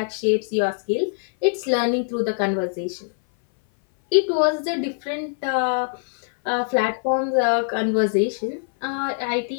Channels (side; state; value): right; silent; 59 dB below the other